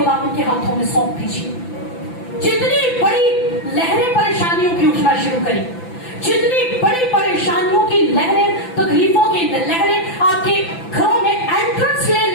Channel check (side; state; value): right; late; 5.9 ms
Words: के हाथों में सौंप दीजिए। जितनी बड़ी लहरें परेशानियों की उठना शुरू करें, जितनी बड़ी परेशानियों की लहरें, तकलीफों की लहरें आपके घरों में एंट्रेंस ले